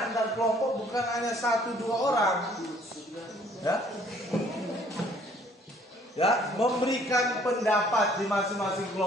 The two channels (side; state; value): both; normal; correlation 0.60